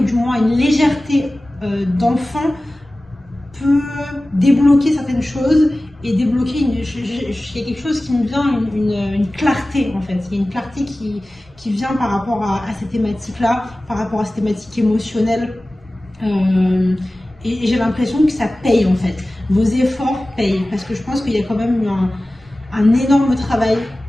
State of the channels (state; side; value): normal; both; correlation 0.97